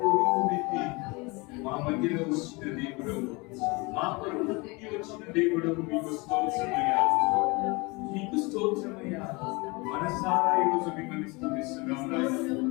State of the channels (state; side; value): quieter; right; 26.5 dB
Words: రూపుమెత్తి మా మధ్యలో వచ్చిన దేవుడు, మా కొరకు పుట్టి వచ్చిన దేవుడు, మీకు స్తోత్రమయ్యా, మీకు స్తోత్రమయ్యా. మనసారా ఈరోజు మిమ్మల్ని స్తుతిస్తున్నాం నాయన,